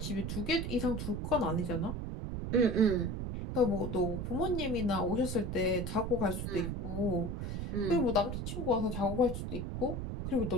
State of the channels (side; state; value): right; noise; rumble, 4 dB below the sound